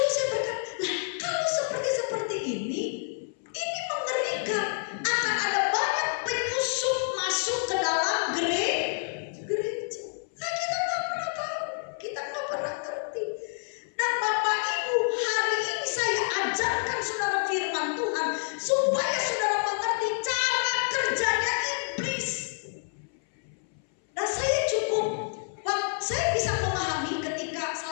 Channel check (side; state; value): right; silent; 59 dB below the other